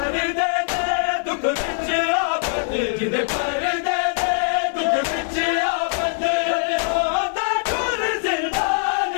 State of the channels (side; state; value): right; silent; digital silence